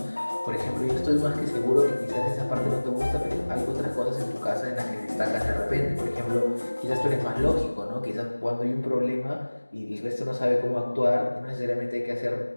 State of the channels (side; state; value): both; inverted; correlation -1.00